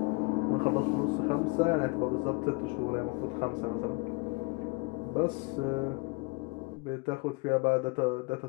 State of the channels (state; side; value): quieter; right; 28.6 dB